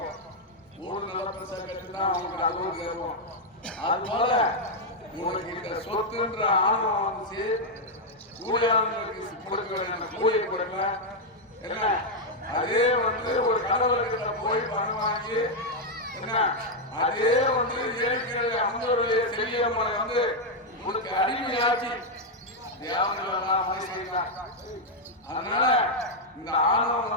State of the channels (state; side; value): normal; both; correlation 0.00